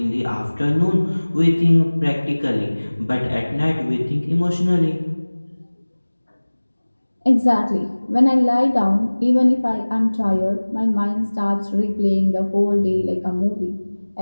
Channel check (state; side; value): inverted; both; correlation -1.00